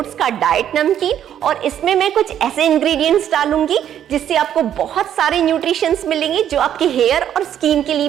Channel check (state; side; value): quieter; left; 10.2 dB